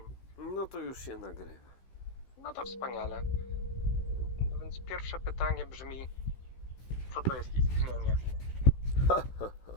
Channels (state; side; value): late; right; 16 ms